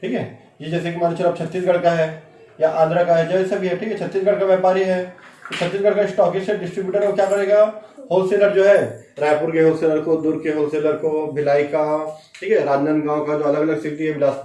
ठीक है, ये जैसे कि मान चलो छत्तीसगढ़ का है या आंध्र का है, जैसे भी है। ठीक है, छत्तीसगढ़ का व्यापारी है तो छत्तीसगढ़ का स्टॉकिस्ट है, डिस्ट्रीब्यूटर वो क्या करेगा, होलसेलर जो है, रायपुर के होलसेलर को, दुर्ग के होलसेलर को, भिलाई का, ठीक है, राजनांदगांव का, जो अलग अलग सिटी है,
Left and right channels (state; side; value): identical; both; correlation 1.00